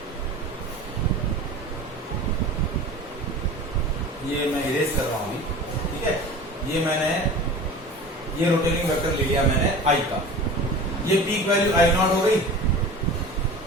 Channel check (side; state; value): both; normal; correlation 0.37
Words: ये मैं इरेज कर रहा हूं अभी, ठीक है। ये मैंने ये रोटेटिंग वेक्टर ले लिया मैंने I का, ये पीक वैल्यू I नॉट हो गई,